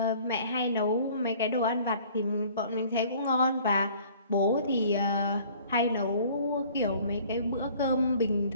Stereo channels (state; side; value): inverted; both; correlation -0.52